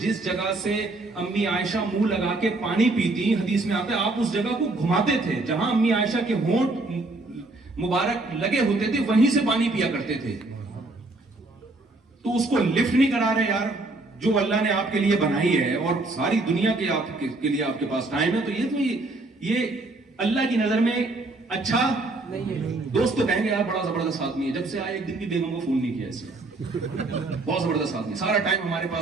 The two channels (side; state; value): left; quieter; 3.0 dB